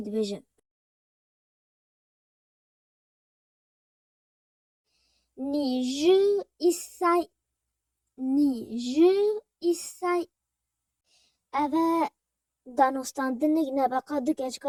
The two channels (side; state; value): both; identical; correlation 1.00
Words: دبیجه نی جی ایسای اوه دانستاندنگ نبقا دو